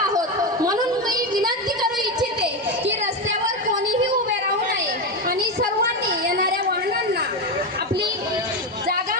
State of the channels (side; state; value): both; normal; correlation 0.13